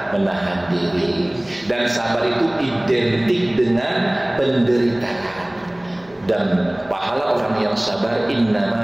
diri, dan sabar itu identik dengan penderitaan. Dan pahala orang yang sabar innama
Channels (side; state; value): right; noise; hum, 29 dB below the sound